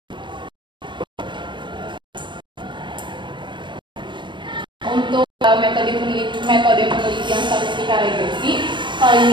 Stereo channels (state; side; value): late; left; 0.23 ms